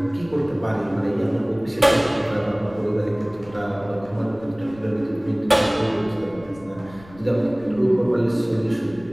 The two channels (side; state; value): left; noise; rumble, 21 dB below the sound